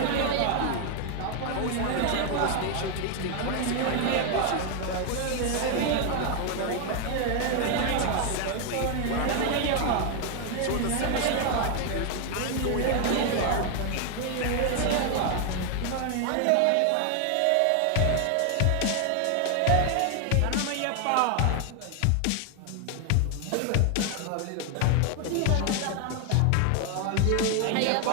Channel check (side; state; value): both; different; correlation 0.00